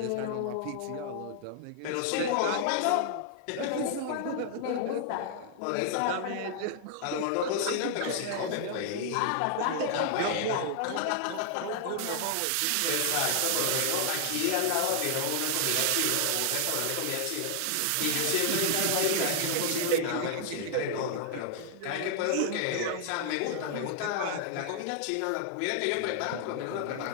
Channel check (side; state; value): both; different; correlation 0.00